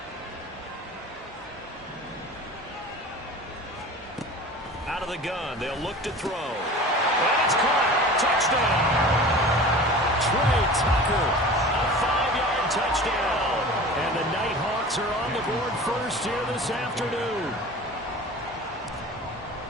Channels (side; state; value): both; normal; correlation 0.38